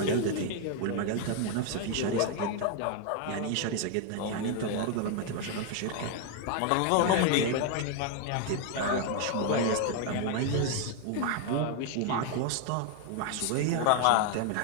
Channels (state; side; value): different; both; correlation 0.01